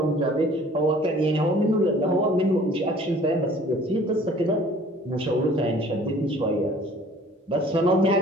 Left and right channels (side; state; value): both; normal; correlation 0.51